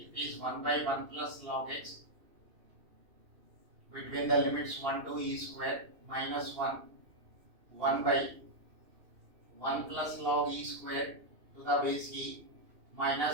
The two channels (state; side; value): late; left; 2.8 ms